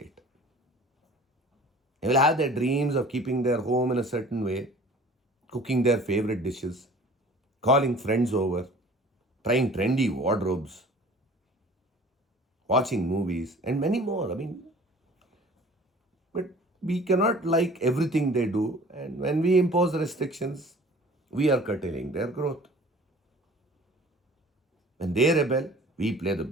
They will have their dreams of keeping their home in a certain way, cooking their favorite dishes, calling friends over, trying trendy wardrobes, watching movies, and many more. But we cannot like everything they do, and when we impose restrictions, we are curtailing their growth. When they rebel, we play the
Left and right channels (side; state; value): both; normal; correlation 0.48